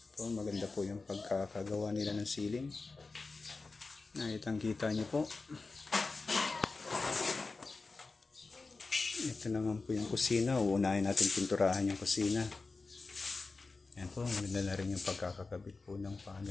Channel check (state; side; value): quieter; right; 3.9 dB